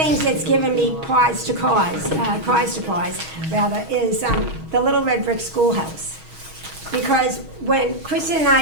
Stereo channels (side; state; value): left; late; 6.3 ms